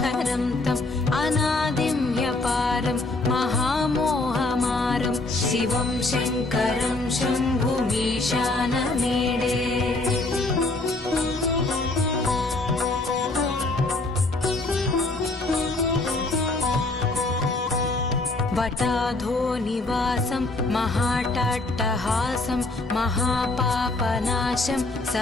तम् अनादिं ह्यपारं महामोहमारं शिवं शङ्करं शम्भुमीशानमीडे वटाधो निवासं महाटाट्टहासं महापापनाशं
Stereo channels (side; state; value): right; quieter; 3.0 dB